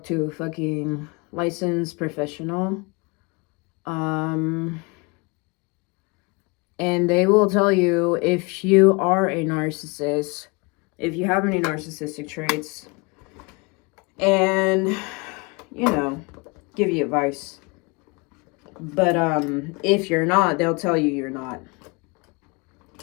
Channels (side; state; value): right; quieter; 28.4 dB